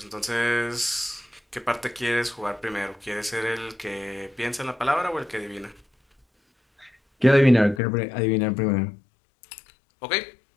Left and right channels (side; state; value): right; drops out; at 7.8 s